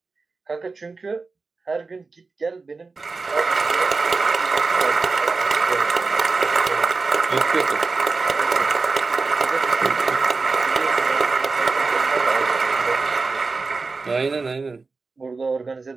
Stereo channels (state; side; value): quieter; left; 4.1 dB